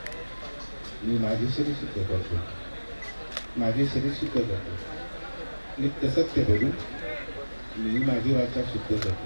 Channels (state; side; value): inverted; both; correlation -1.00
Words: मी माझे शरीर शुद्ध करतो माझे शरीर शुद्ध करतो नित्य सत्य बोलून मी माझी वाचा शुद्ध